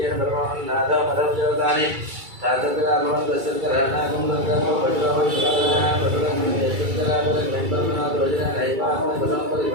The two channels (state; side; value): late; left; 2.3 ms